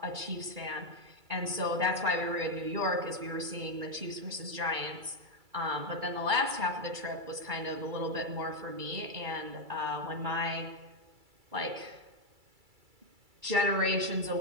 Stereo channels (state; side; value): late; left; 2.3 ms